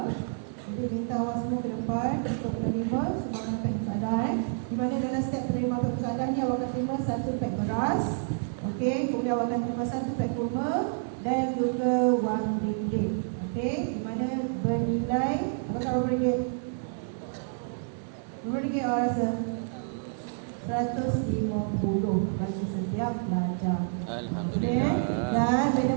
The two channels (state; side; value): silent; left; digital silence